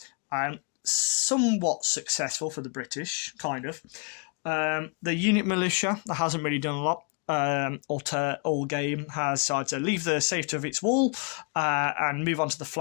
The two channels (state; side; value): quieter; right; 37.0 dB